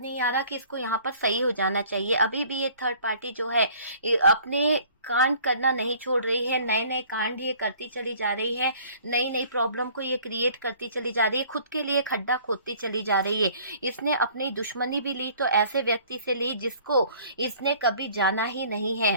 आ रहा कि इसको यहाँ पर सही हो जाना चाहिए। अभी भी ये थर्ड पार्टी जो है अपने कांड करना नहीं छोड़ रही है, नए नए कांड ये करती चली जा रही है, नई नई प्रॉब्लम को ये क्रिएट करती चली जा रही है, खुद के लिए खड्डा खोदती चली जा रही है। इसने अपनी दुश्मनी भी ली तो ऐसे व्यक्ति से ली जिसको इसने कभी जाना ही नहीं है,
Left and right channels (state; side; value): inverted; both; correlation -0.53